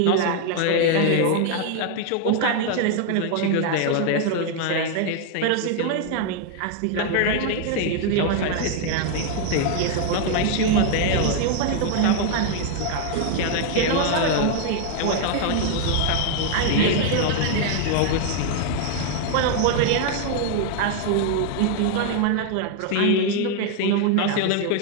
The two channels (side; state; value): both; different; correlation 0.00